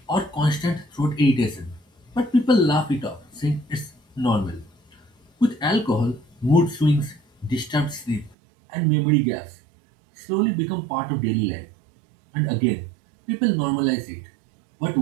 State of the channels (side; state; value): left; drops out; at 8.3 s